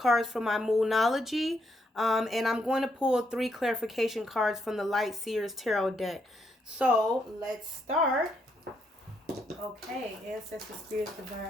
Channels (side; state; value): both; normal; correlation 0.77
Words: from my Moonology. And I'm going to pull 3 clarification cards from the Light Seers Tarot deck. So let's start. Okay, Ancestor Spirits,